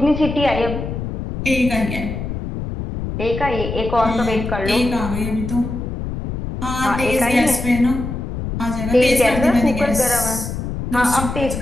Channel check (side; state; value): left; noise; rumble, 5 dB below the sound